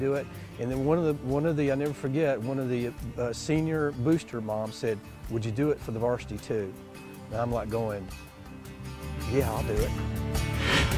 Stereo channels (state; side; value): identical; both; correlation 1.00